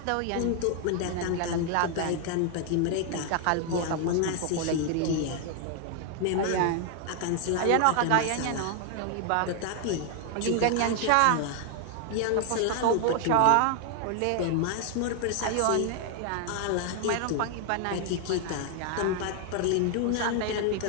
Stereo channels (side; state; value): both; different; correlation 0.00